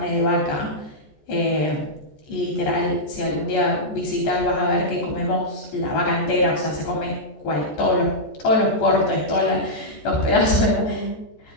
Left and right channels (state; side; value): late; right; 14 ms